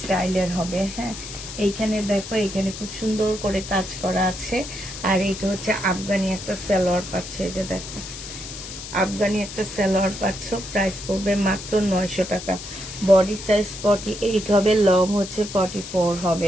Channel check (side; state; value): left; noise; hiss, 11 dB below the sound